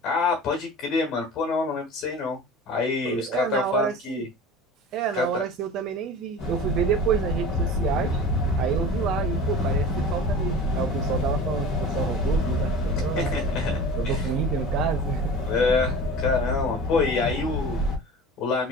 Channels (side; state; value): both; normal; correlation 0.37